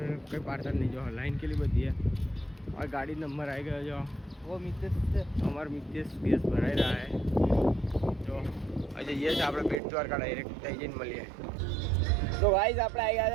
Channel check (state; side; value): drops out; left; at 9.8 s